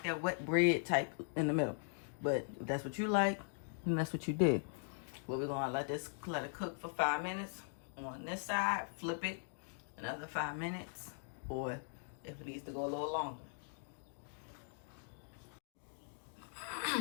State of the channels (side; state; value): right; silent; digital silence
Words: that wet bread type in the middle. But if that's what you like, then that's what you did. But we're going to let it cook for 5 minutes on this side. Flip it another 5 minutes. Or if it needs to go a little longer.